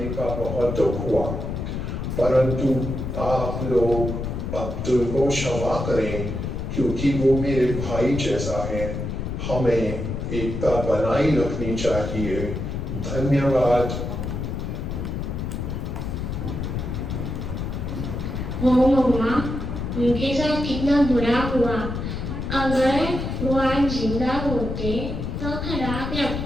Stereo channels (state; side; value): noise; left; rumble, 4 dB below the sound